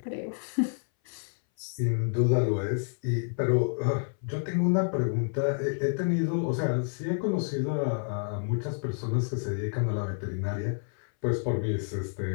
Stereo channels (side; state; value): right; silent; 59 dB below the other